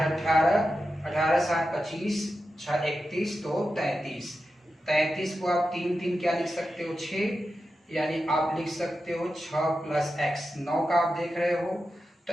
18, 18 7 25, 6 31, तो 33। 33 को आप 3 3 क्या लिख सकते हो 6, यानी आप लिख सकते हो 6 प्लस x। 9 का आप देख रहे हो तो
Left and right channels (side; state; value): both; normal; correlation 0.90